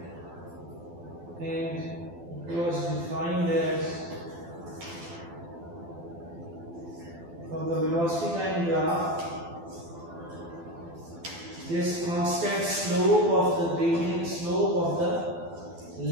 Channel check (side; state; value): left; late; 12 ms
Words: and it was defined as from the velocity time graph, this constant slope of the gradient slope of the